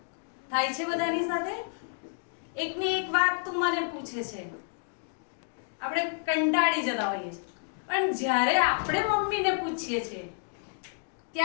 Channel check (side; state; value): right; silent; digital silence